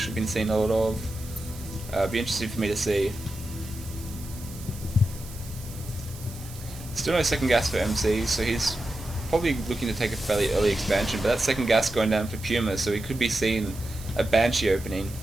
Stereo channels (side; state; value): right; noise; hiss, 17 dB below the sound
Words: we've been seeing a lot of. It'd be interesting for me to see. Still no second gas for MC, so he's probably looking to take a fairly early expansion, but that second gas going down for Puma, so he could be seeing a Banshee opening.